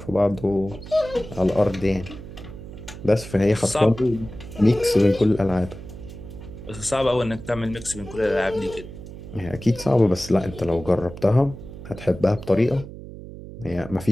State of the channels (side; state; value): right; noise; hum, 13 dB below the sound